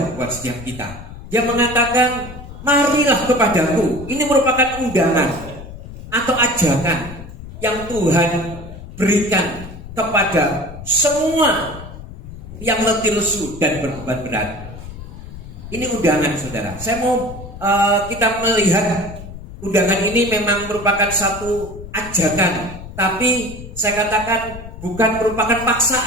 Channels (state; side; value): noise; left; rumble, 13 dB below the sound